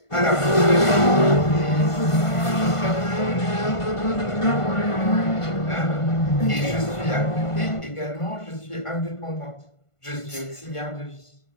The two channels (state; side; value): late; right; 1.5 ms